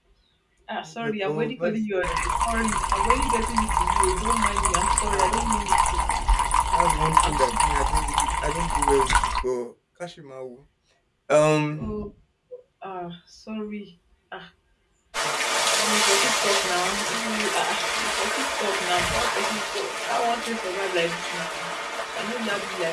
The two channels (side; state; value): both; identical; correlation 1.00